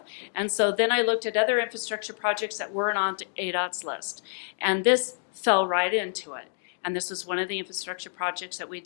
And so then I looked at other infrastructure projects that weren't on ADOT's list. And this fell right into it. And this was one of the infrastructure projects that we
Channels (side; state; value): right; silent; digital silence